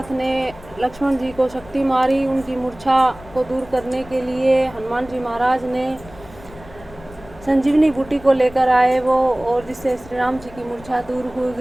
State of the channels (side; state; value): left; noise; rumble, 20 dB below the sound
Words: ने लक्ष्मण जी को शक्ति मारी। उनकी मूर्छा को दूर करने के लिए हनुमान जी महाराज ने संजीवनी बूटी को लेकर आए वो, और जिससे श्री राम जी की मूर्छा दूर हो